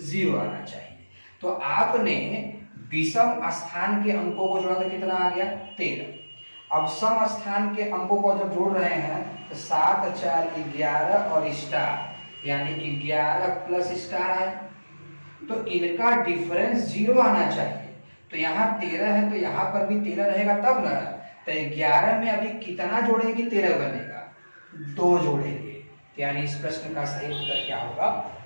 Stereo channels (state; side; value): inverted; both; correlation -1.00